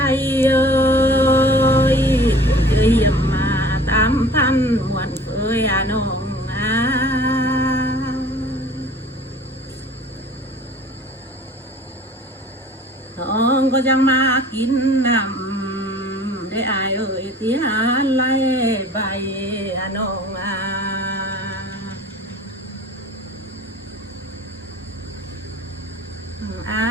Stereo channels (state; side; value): normal; both; correlation 0.47